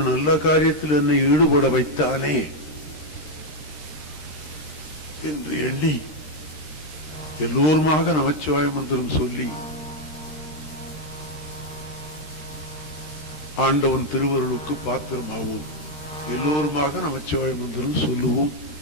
நல்ல காரியத்தில் என்னை ஈடுபட வைத்தானே என்று எண்ணி எல்லோருமாக நமச்சிவாய மந்திரம் சொல்லி ஆண்டவன் திருவருளுக்கு பாத்திரமாவோம். எல்லோருமாக நமச்சிவாய மந்திரம் சொல்லுவோம்.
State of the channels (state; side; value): late; right; 13 ms